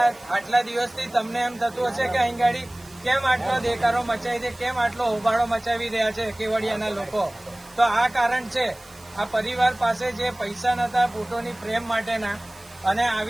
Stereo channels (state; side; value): noise; right; hiss, 24 dB below the sound